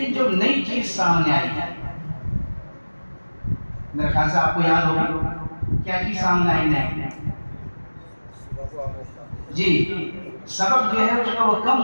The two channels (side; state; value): both; inverted; correlation -1.00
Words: جو نئی چیز سامنے آئی ہے, میرے خیال سے آپ کو یاد ہوگی کیا چیز سامنے آئی نہیں. جی, سبق جو ہے اس کا وہ کم